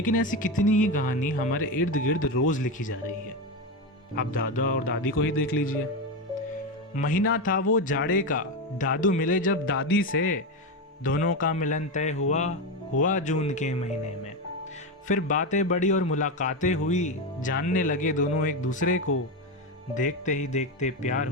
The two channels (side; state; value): both; normal; correlation 0.14